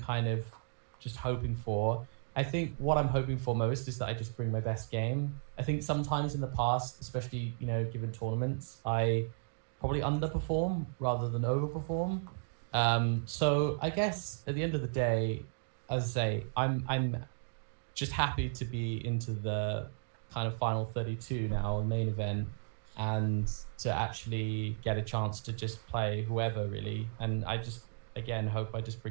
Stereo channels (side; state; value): left; silent; digital silence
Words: of just hoping for. I think what I'm hoping for most is that I just bring my best game. I think sometimes in the past, especially, given tournaments, I probably underperform rather than overperform. So I guess at the end of the day, as I say, I'm just happy to be into the kind of final 32 now, main event, and to actually get a chance to just play whoever really. And I just, again, hope I just